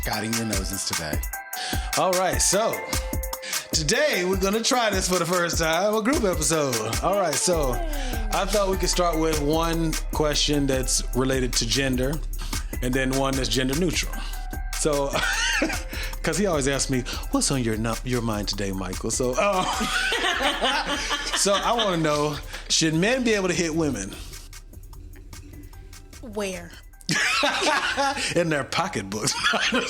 Guiding your noses today. All right, so today we're going to try this for the first time, a group episode. All right, so I thought we could start with one question that's related to gender and then one that's gender neutral. So, because he always asks me, what's on your mind today, Michael? So, so I want to know, should men be able to hit women? Where? In their pocketbooks.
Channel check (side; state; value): both; identical; correlation 1.00